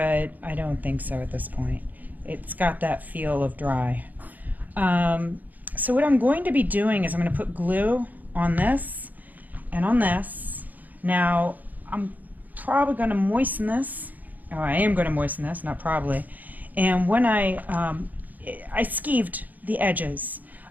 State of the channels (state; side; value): late; left; 0.082 ms